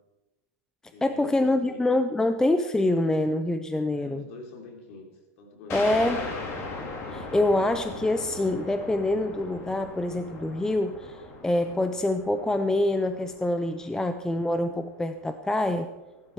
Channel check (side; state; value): both; normal; correlation 0.82